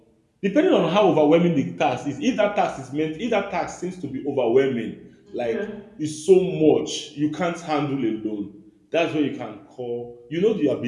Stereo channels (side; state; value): both; identical; correlation 1.00